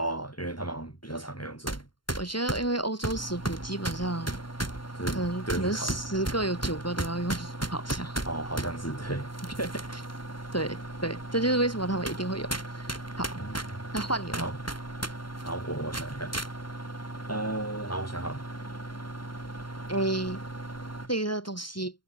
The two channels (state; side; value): late; right; 0.72 ms